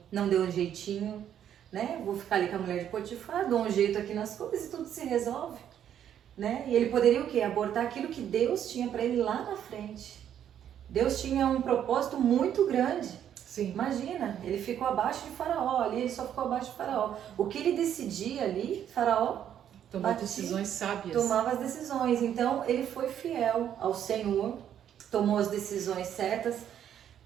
deu um jeitinho, né? Vou ficar ali com a mulher de Potifar, dou um jeito aqui nas coisas e tudo se resolve, né? E ele poderia o quê? Abortar aquilo que Deus tinha para ele lá na frente. Deus tinha um propósito muito grande. Sim. Imagina, ele ficou abaixo de Faraó, ali ele só ficou abaixo de Faraó. O que ele decidia ali, Faraó Tomar decisões sábias. tomava as decisões. Então ele foi fiel ao Senhor, tomou as decisões certas,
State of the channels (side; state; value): left; quieter; 9.8 dB